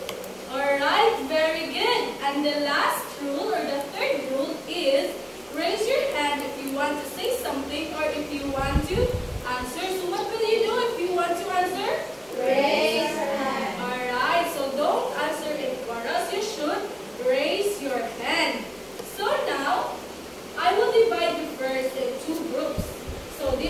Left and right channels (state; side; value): identical; both; correlation 1.00